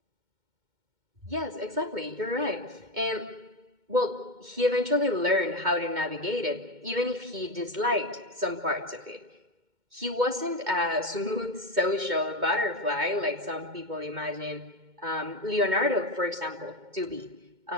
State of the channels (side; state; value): left; late; 2.2 ms